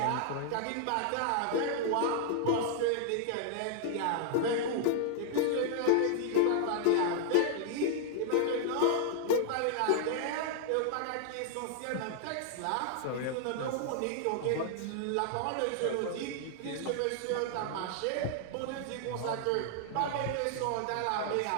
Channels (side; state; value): both; different; correlation 0.00